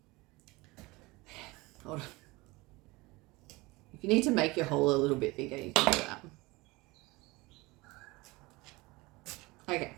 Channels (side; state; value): left; quieter; 22.7 dB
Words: Hold on. If you need to make your hole a little bit bigger, you can do that. Okay,